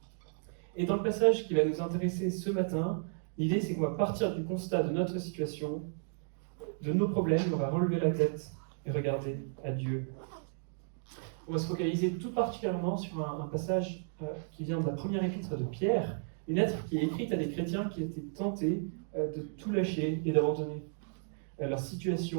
Et dans le passage qui va nous intéresser ce matin, l'idée c'est qu'on va partir du constat de notre situation, de nos problèmes, on va relever la tête et regarder à Dieu. On va se focaliser tout particulièrement sur un passage qui vient de la première épître de Pierre, une lettre qui est écrite à des chrétiens qui étaient tentés de tout lâcher et d'abandonner. Leur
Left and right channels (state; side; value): silent; left; digital silence